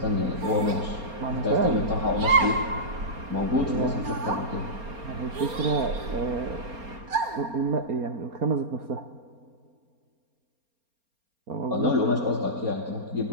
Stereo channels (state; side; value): late; left; 4.3 ms